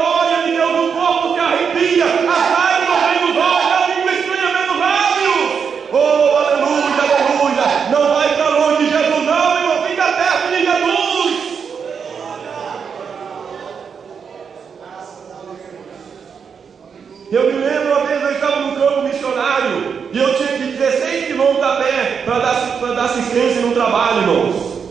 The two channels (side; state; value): left; quieter; 6.5 dB